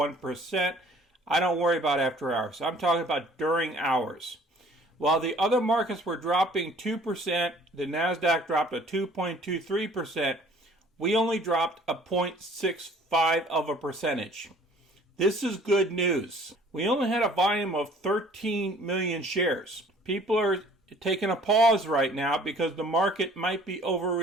I don't worry about after hours. I'm talking about during hours. While the other markets were dropping 2%, the NASDAQ dropped a 2.23%. We only dropped a 0.65 of a percentage. This is good news. We only had a volume of 13 million shares. People are taking a pause right now because the market might be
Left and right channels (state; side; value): normal; both; correlation 0.54